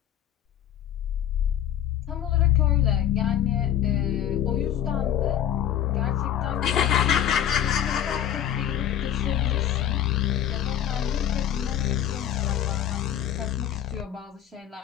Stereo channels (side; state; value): right; quieter; 10.5 dB